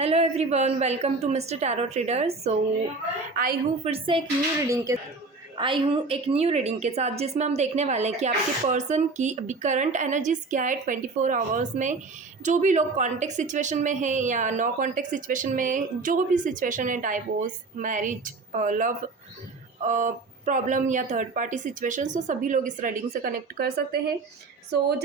everyone, welcome to mister tarot trader. I हूँ फिर से एक न्यू रीडिंग के साथ, जिसमें हम देखने वाले हैं कि आपके पर्सन की अभी करंट एनर्जीज क्या है 24 आवर्स में। जो भी लोग कॉन्टेक्ट सिचुएशन में हैं या नो कॉन्टेक्ट सिचुएशन में, जो भी सिचुएशन है, डाइवोर्स, मैरिज, लव प्रॉब्लम या थर्ड पार्टी सिचुएशन, तो सभी लोग इस रीडिंग से कनेक्ट कर सकते हैं।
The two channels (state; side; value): quieter; left; 3.9 dB